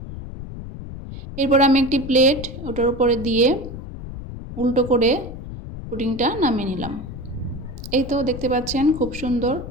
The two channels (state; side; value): noise; left; rumble, 10 dB below the sound